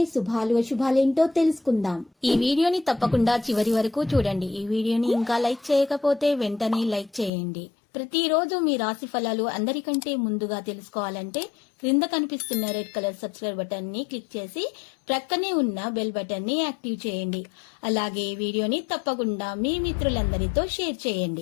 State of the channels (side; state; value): right; drops out; at 7.3 s